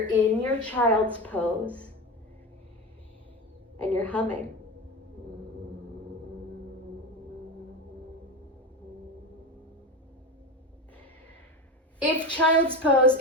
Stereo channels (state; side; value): normal; both; correlation 0.23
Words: in your child's pose and you're humming. If child's pose